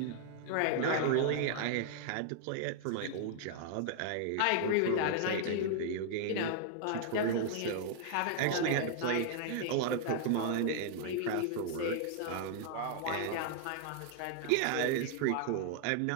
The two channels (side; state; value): both; different; correlation 0.00